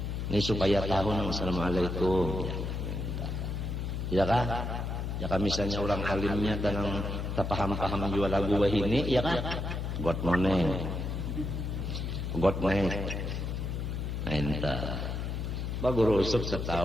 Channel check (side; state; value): left; noise; hum, 3 dB below the sound